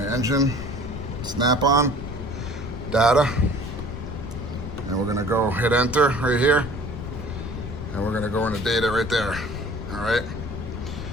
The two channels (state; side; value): noise; left; rumble, 8 dB below the sound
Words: engine, snap-on, data, and we're gonna go hit enter right here, and we're gonna go into data right there. All right.